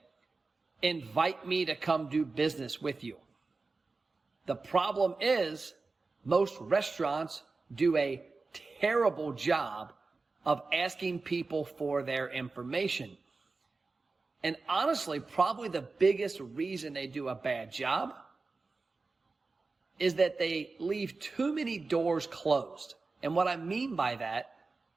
Invite me to come do business with you. The problem is most restaurants do a terrible job of asking people for their information. And honestly, probably the biggest reason they do a bad job is that they leave too many doors closed. And what I mean by that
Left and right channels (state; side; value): quieter; left; 3.9 dB